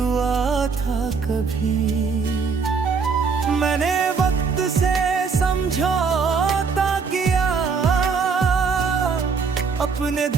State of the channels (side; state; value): left; quieter; 5.3 dB